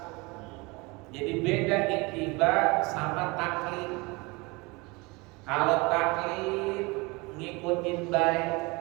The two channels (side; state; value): left; quieter; 25.8 dB